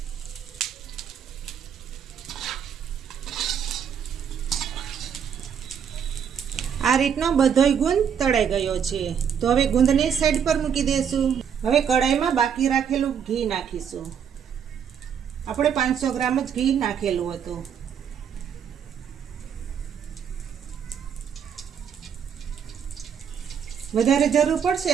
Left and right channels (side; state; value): left; quieter; 7.9 dB